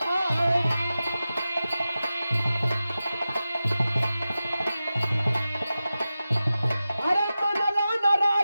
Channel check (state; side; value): inverted; both; correlation -0.93